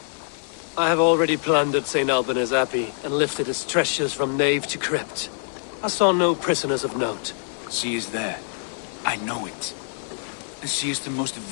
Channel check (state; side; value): silent; right; digital silence